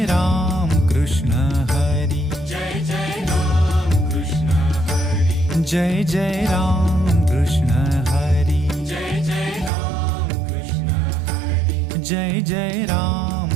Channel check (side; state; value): left; drops out; at 9.7 s